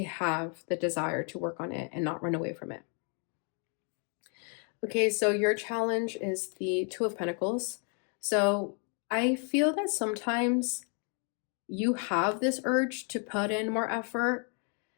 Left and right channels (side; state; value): right; quieter; 39.3 dB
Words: have the desire to work on it and not run away from it. Okay, so your challenge is the Two of Pentacles. So I feel that sometimes you have this urge to put in more effort.